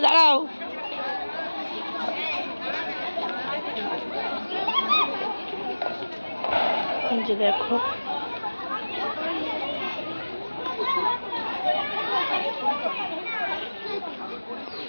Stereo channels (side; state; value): both; inverted; correlation -1.00